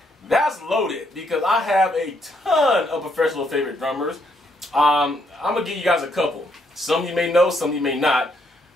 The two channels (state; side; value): normal; both; correlation 0.73